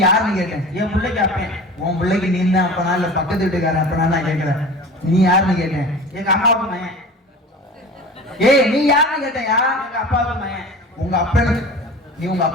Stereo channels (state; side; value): normal; both; correlation 0.37